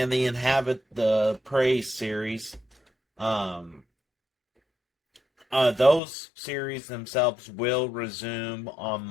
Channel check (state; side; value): drops out; right; at 6.0 s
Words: the Praise series, um, those series themselves will resume on